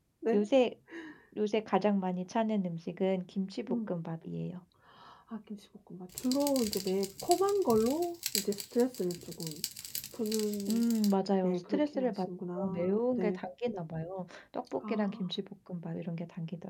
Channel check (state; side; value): identical; both; correlation 1.00